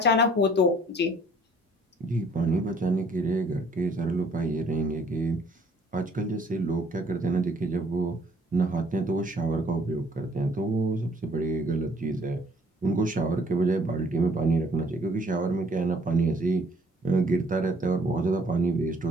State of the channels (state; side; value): normal; both; correlation 0.59